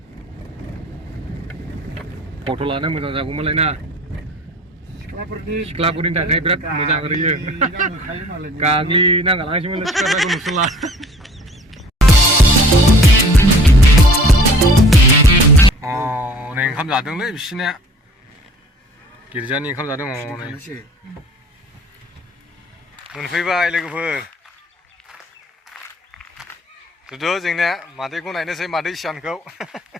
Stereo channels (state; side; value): normal; both; correlation 0.51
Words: फट' लानो मोजां जागौमोनलाय ना सिख्लाफोरनि थाखाय बिराद मोजां ओरैयो गाग्लिनांगालांसैमोन सिख्लाफोरखौ नुसनला नै ओंखाम जादोंलै बिसिनिया गिर्जानि ओंखाम जादों नै मोनफैबाय लोगोफोर जुदु जोंनिया मादैखौ नायनोसै मादै सियानखौ